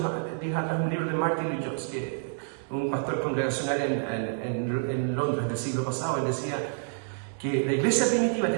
días atrás un libro de Martin Lloyd-Jones, que un pastor congregacional en Londres del siglo pasado. Él decía que la iglesia primitiva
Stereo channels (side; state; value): left; silent; digital silence